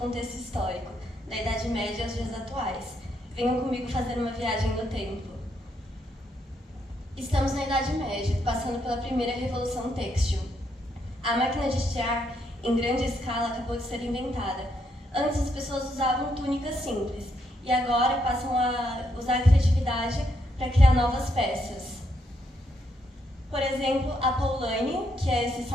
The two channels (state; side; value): normal; both; correlation 0.76